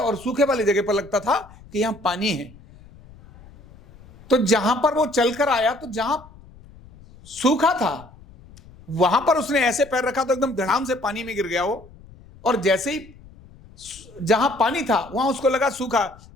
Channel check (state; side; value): noise; left; rumble, 22 dB below the sound